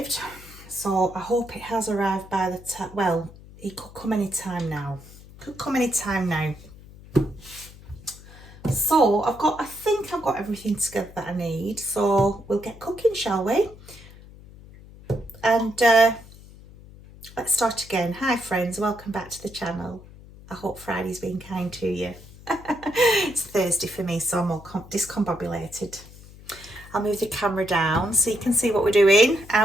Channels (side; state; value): left; noise; hum, 19 dB below the sound